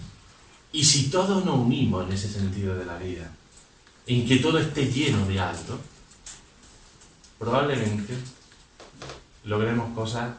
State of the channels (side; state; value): both; identical; correlation 1.00